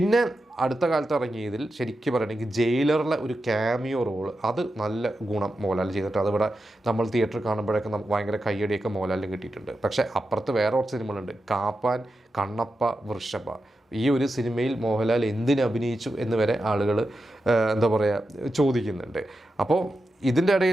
അടുത്ത കാലത്ത് ഇറങ്ങിയതിൽ ശരിക്കും പറയുകയാണെങ്കിൽ ജയിലറിലെ ഒരു ക്യാമിയോ റോൾ, അത് നല്ല ഗുണം മോഹൻലാൽ ചെയ്തിട്ട് അതിവിടെ നമ്മൾ തിയേറ്ററിൽ കാണുമ്പോഴൊക്കെ ഭയങ്കര കയ്യടിയൊക്കെ മോഹൻലാലിന് കിട്ടിയിട്ടുണ്ട്. പക്ഷേ അപ്പുറത്ത് വേറെ കുറച്ച് സിനിമകളുണ്ട്, കാപ്പാൻ, കണ്ണപ്പ, വൃഷഭ. ഈ ഒരു സിനിമയിൽ മോഹൻലാൽ എന്തിന് അഭിനയിച്ചു എന്ന് വരെ ആളുകൾ എന്താ പറയുക ചോദിക്കുന്നുണ്ട്. അപ്പോൾ ഇതിൻ്റെ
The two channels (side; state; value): both; normal; correlation 0.89